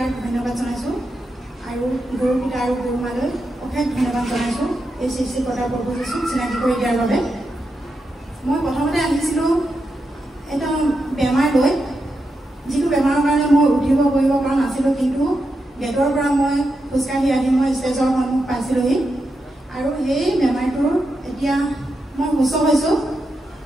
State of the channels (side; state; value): both; normal; correlation 0.86